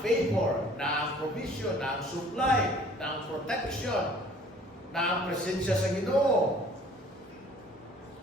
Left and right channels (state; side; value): normal; both; correlation 0.53